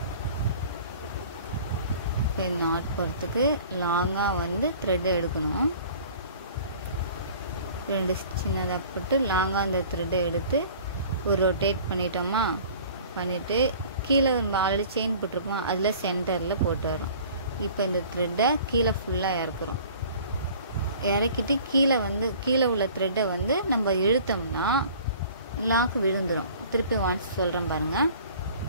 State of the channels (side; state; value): both; inverted; correlation -0.48